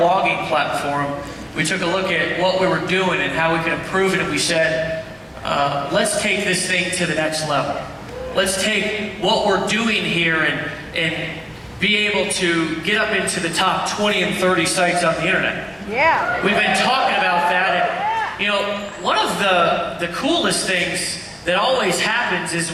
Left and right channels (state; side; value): identical; both; correlation 1.00